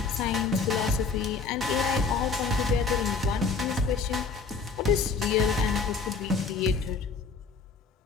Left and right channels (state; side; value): quieter; right; 4.8 dB